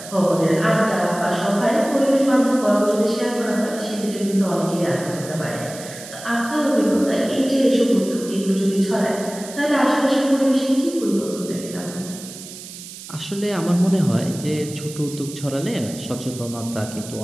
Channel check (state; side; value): noise; right; hiss, 14 dB below the sound